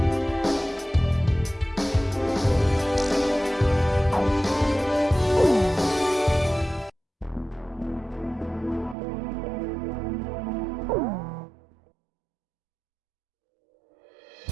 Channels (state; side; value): drops out; left; at 9.0 s